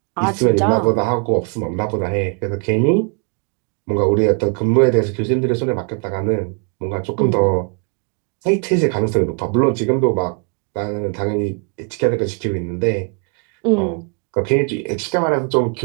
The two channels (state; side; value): quieter; left; 38.6 dB